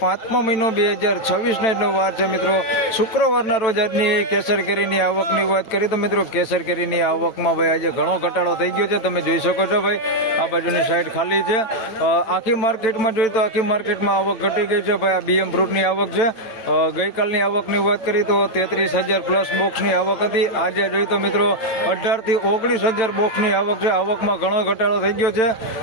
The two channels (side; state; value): right; late; 9.0 ms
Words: 5મો મહિનો 2026 આજનો વાર છે મિત્રો શુક્રવારના રોજ. આજની કેસર કેરીની આવકની વાત કરીએ તો મિત્રો કેસર કેરીની આવકમાં ભાઈ આજે ઘણો ઘટાડો થઈ ગયો છે. તમે જોઈ શકો છો ભાઈ આ બાજુની સાઈડ ખાલી છે. આખી માર્કેટમાં જોઈએ તો આખી માર્કેટમાં આવક ઘટી ગઈ છે ભાઈ. આ બીએમ ફ્રૂટની આવક છે. ગઈકાલની આવકની વાત કરીએ તો 33,000 પ્લસ બોક્સની આવક હતી. આજે જોઈએ તો મિત્રો 18 થી 19,000 બોક્સની આવક છે. આવકમાં ઘણો ઘટાડો થઈ ગયો છે.